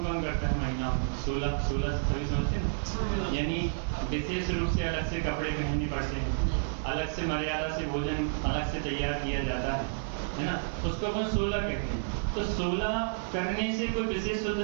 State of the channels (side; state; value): left; silent; 57 dB below the other